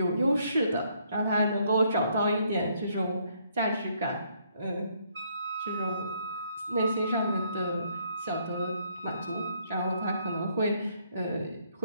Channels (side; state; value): both; inverted; correlation -0.69